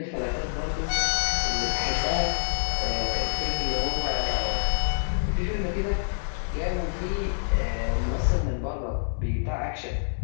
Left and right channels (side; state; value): right; silent; digital silence